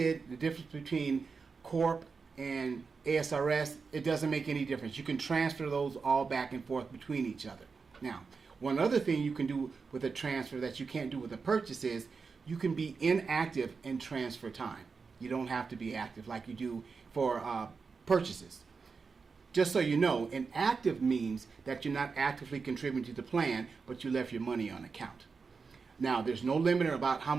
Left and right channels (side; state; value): left; quieter; 5.0 dB